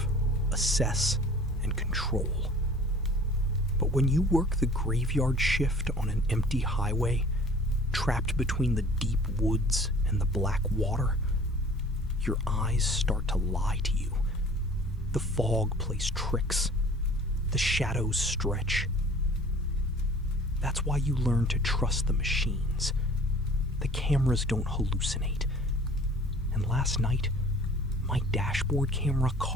assess, and control. But when you work the graveyard shift on an empty highway, trapped between the deep woods and the black water, your eyes start to lie to you. The fog plays tricks. The shadows stretch. That's why you learn to trust the machines. The cameras don't hallucinate. And last night, my dashboard camera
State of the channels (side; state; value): both; normal; correlation 0.48